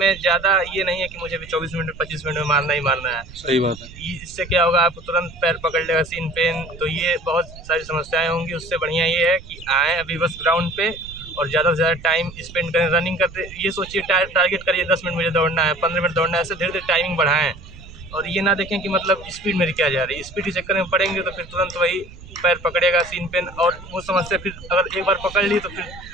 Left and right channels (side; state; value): right; noise; rumble, 17 dB below the sound